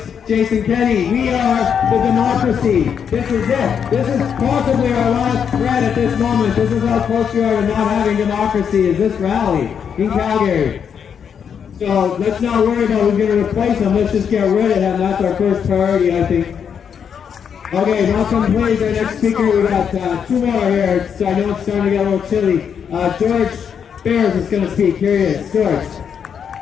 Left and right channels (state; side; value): quieter; right; 7.5 dB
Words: Jason Kenney. We are the democracy. This is it. This is possibly our last threat at this moment. This is how close we are to not having democracy, is this rally in Calgary. So let's not worry about who's going to replace him. Let's just get rid of him. That's our first priority, I think. Okay, welcome please our next speaker. We got 2 more here, so I know it's starting to get a little chilly. George Bears is going to speak. Here he is. George.